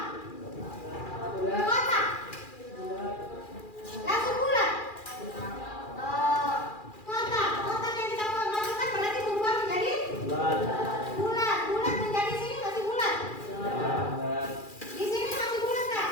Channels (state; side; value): late; right; 2.4 ms